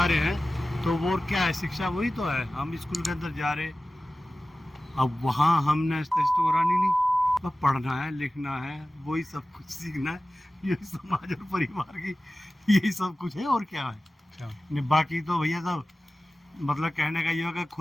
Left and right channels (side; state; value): both; normal; correlation 0.96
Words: रहे हैं, तो वो क्या है, शिक्षा वही तो है। हम स्कूल के अंदर जा रहे, अब वहाँ हमने टेस्ट करानी नहीं, बस पढ़ना है, लिखना है, वही सब कुछ सीखना है। यही समाज और परिवार की यही सब कुछ है, और क्या है। बाकी तो भैया सब मतलब कहने का ये होगा,